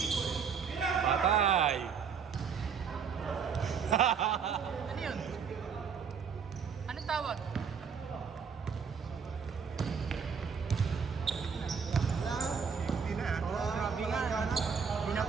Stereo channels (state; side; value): quieter; left; 6.4 dB